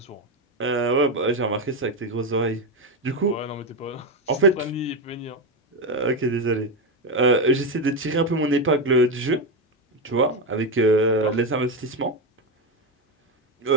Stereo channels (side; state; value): both; normal; correlation 0.10